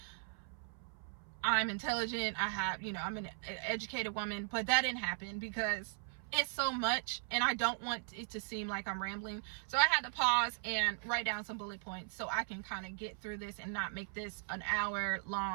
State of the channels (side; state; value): left; silent; 52 dB below the other